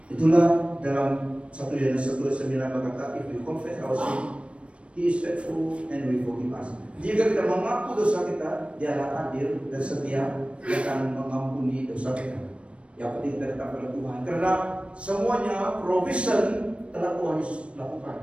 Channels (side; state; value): left; late; 0.060 ms